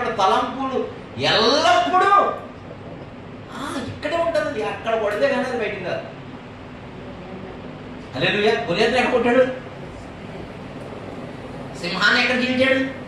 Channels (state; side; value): identical; both; correlation 1.00